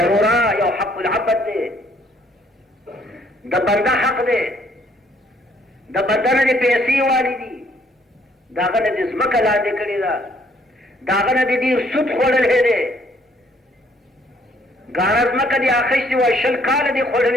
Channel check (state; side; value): normal; both; correlation 0.65